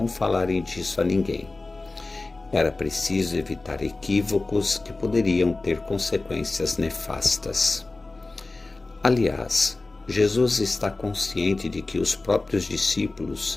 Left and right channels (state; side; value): quieter; right; 3.3 dB